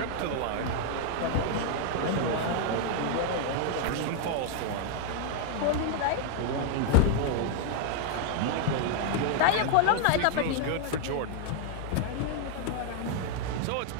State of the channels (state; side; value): different; both; correlation -0.01